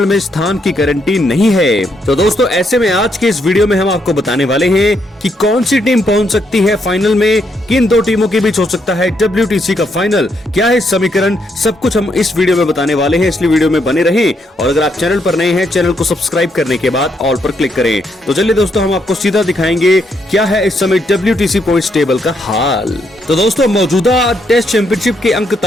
में स्थान की गारंटी नहीं है। तो दोस्तों ऐसे में आज के इस वीडियो में हम आपको बताने वाले हैं कि कौन सी टीम पहुंच सकती है फाइनल में, किन दो टीमों के बीच हो सकता है WTC का फाइनल, क्या है समीकरण, सब कुछ हम इस वीडियो में बताने वाले हैं। इसलिए वीडियो में बने रहें और अगर आप चैनल पर नए हैं चैनल को सब्सक्राइब करने के बाद ऑल पर क्लिक करें। तो चलिए दोस्तों हम आपको सीधा दिखाएंगे क्या है इस समय WTC पॉइंट्स टेबल का हाल। तो दोस्तों मौजूदा टेस्ट चैंपियनशिप के अंक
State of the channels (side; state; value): both; normal; correlation 0.76